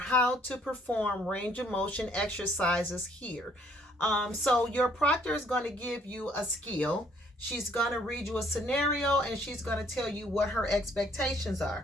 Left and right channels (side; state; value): both; normal; correlation 0.64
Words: to perform range of motion exercises here. So your proctor is going to give you a skill. She's going to read you a scenario and she's going to tell you what her expectations